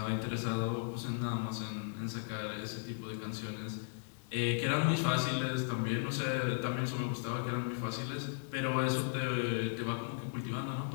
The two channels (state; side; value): silent; right; 54 dB below the other